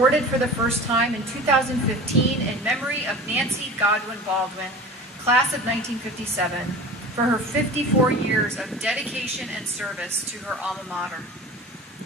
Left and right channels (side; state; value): both; normal; correlation 0.37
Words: for the first time in 2015 in memory of Nancy Godwin Baldwin, Class of 1957, for her 54 years of dedication and service to her alma mater.